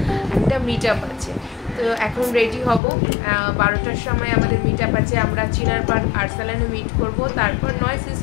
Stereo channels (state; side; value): drops out; right; at 2.8 s